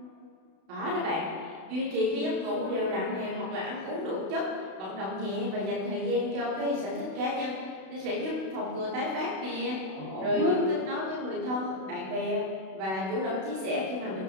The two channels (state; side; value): late; left; 32 ms